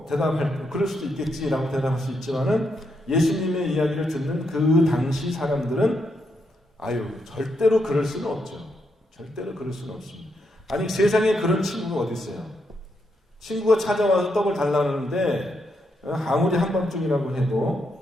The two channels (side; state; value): both; normal; correlation 0.80